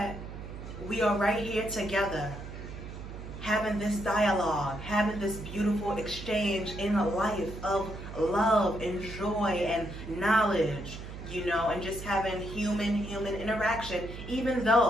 we are right here together, having this dialogue, having this beautiful exchange in a life of love and joy and knowledge, and just having human interaction, even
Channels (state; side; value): noise; right; hum, 11 dB below the sound